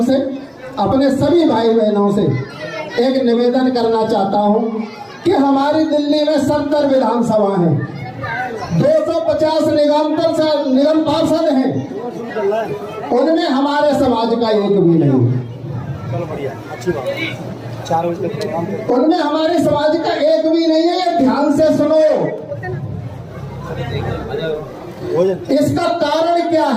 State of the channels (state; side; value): identical; both; correlation 1.00